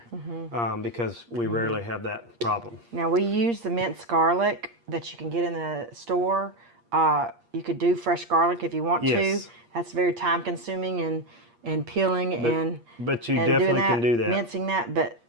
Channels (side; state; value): left; late; 8.5 ms